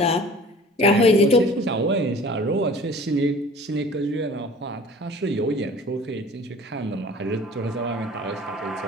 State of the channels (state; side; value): normal; both; correlation 0.46